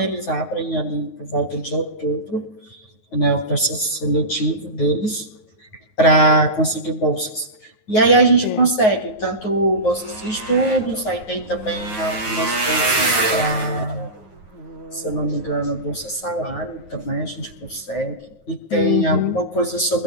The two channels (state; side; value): late; right; 9.4 ms